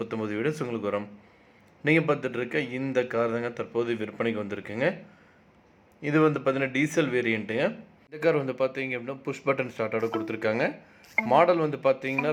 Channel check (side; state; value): both; identical; correlation 1.00